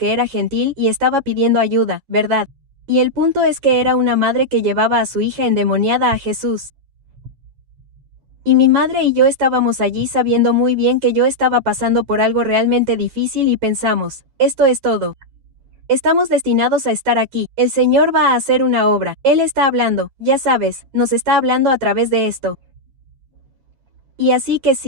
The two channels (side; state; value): left; late; 9.3 ms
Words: era gentil y estaba pidiendo ayuda, ¿verdad? Y el punto es que era una madre que llevaba a su hija endemoniada a Jesús. Y mi madre y yo estábamos allí sabiendo muy bien que yo estaba pasando por algo realmente difícil y pensamos, esto es todo. Estamos destinados a estar aquí, el Señor va a hacer una obra, Él está hablando, ya sabes, nos está hablando a través de esto. Y así que